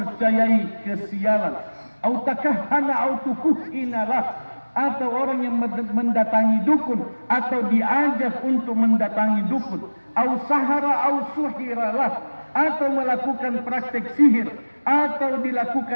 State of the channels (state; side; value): inverted; both; correlation -1.00